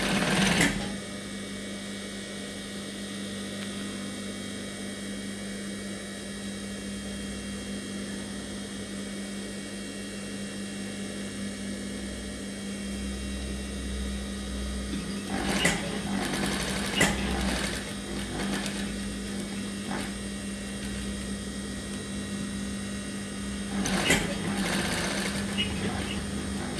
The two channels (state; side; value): identical; both; correlation 1.00